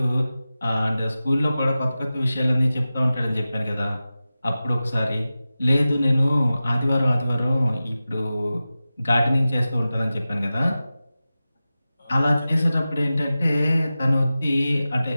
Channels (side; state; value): both; inverted; correlation -0.95